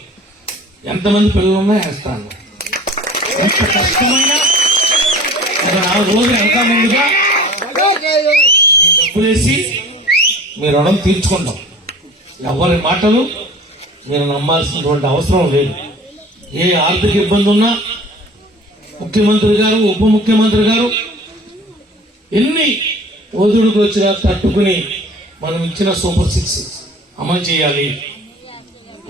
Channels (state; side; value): normal; both; correlation 0.44